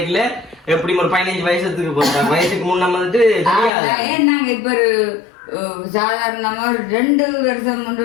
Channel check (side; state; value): right; drops out; at 3.7 s